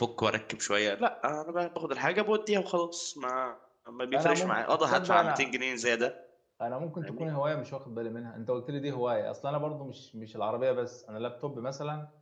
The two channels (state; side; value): identical; both; correlation 1.00